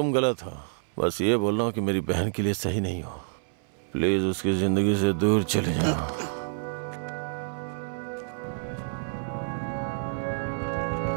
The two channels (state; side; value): silent; left; 59 dB below the other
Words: गलत हो, बस ये बोल रहा हूँ कि मेरी बहन के लिए सही नहीं हो। प्लीज उसकी जिंदगी से दूर चले जाओ।